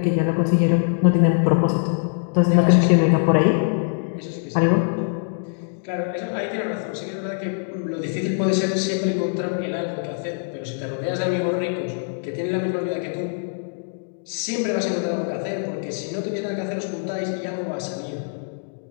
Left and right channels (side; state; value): right; silent; digital silence